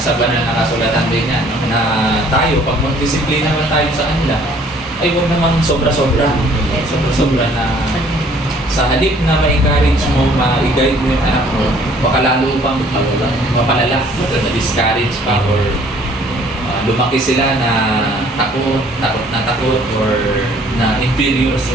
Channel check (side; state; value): both; normal; correlation 0.58